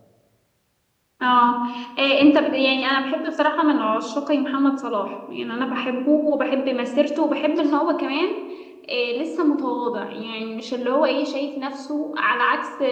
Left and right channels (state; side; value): identical; both; correlation 1.00